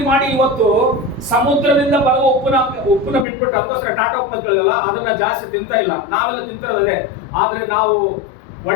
ಮಾಡಿ ಇವತ್ತು ಸಮುದ್ರದಿಂದ ಬರುವ ಉಪ್ಪನ್ನ ಬಿಟ್ಬಿಟ್ಟು ಅದಕ್ಕೋಸ್ಕರ ಟಾಟಾ ಉಪ್ಪು ಅಂತ ಕೇಳಲ್ಲ, ಅದನ್ನ ಜಾಸ್ತಿ ತಿಂತಾ ಇಲ್ಲ. ನಾವೆಲ್ಲ ತಿಂತಿರೋದೇ. ಆದ್ರೆ ನಾವು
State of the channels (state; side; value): drops out; right; at 3.2 s